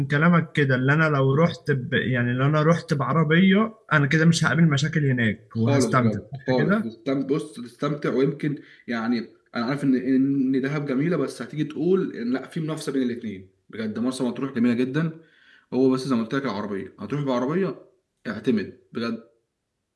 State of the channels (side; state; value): both; identical; correlation 1.00